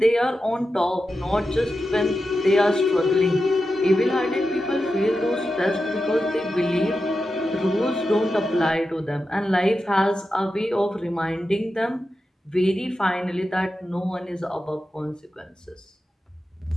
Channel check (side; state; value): both; normal; correlation 0.90